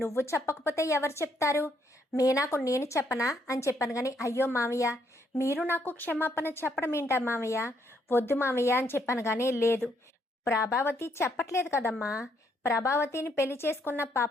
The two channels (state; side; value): normal; both; correlation 0.72